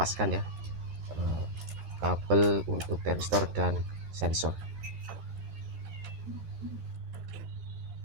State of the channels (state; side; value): late; left; 13 ms